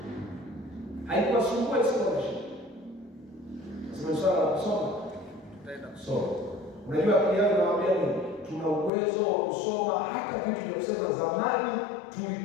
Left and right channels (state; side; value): drops out; right; at 8.9 s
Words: Haikuwasumbua scholarship. Nasema swala la kusoma. Tutaenda kusoma. Unajua akili yangu inawaambia nini? Tuna uwezo wa kusoma hata vitu vya kusema zamani